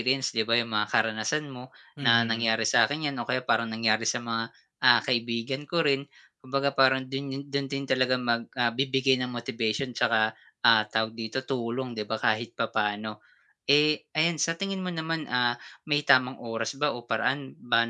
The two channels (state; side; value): identical; both; correlation 1.00